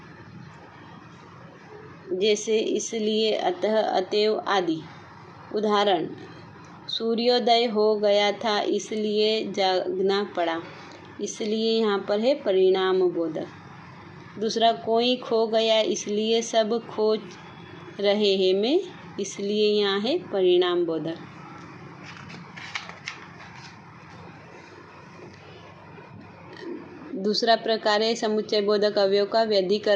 जैसे इसलिए, अतः, अतएव आदि। उदाहरण: सूर्योदय हो गया था इसलिए जागना पड़ा। इसलिए यहाँ पर है परिणाम बोधक। दूसरा, कोई खो गया इसलिए सब खोज रहे हैं में इसलिए यहाँ है परिणाम बोधक। दूसरा प्रकार है समुच्चय बोधक अवयव का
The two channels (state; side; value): identical; both; correlation 1.00